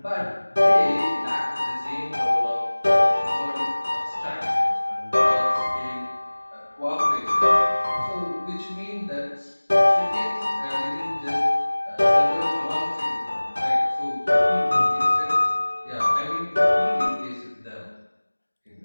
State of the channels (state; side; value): inverted; both; correlation -1.00